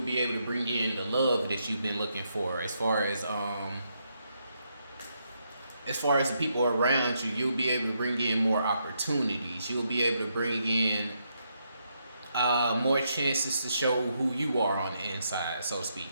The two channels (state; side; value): inverted; both; correlation -0.79